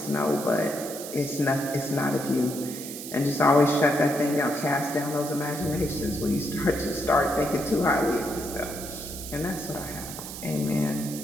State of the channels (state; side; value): noise; right; hiss, 10 dB below the sound